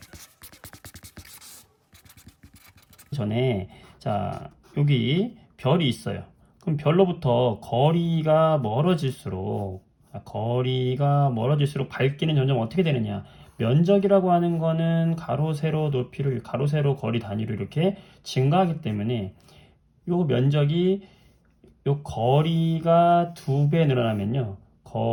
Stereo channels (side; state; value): both; identical; correlation 1.00